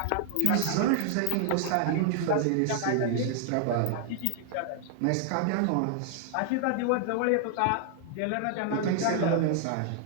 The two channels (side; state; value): both; different; correlation 0.00